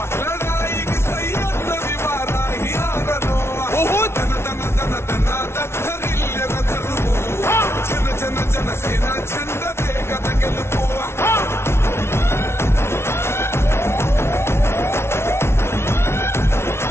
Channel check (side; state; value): right; late; 0.12 ms